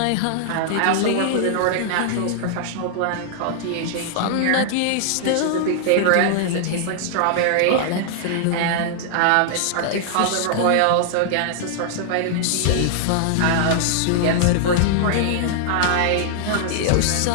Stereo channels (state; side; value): different; both; correlation -0.01